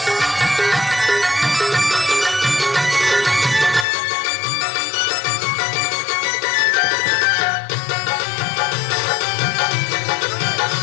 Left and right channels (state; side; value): drops out; right; at 3.9 s